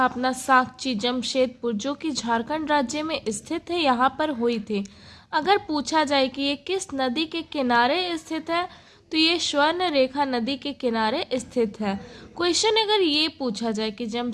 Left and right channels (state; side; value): identical; both; correlation 1.00